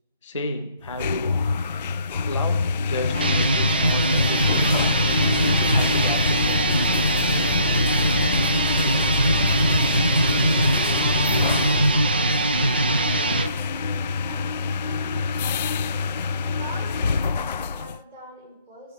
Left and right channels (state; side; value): inverted; both; correlation -0.61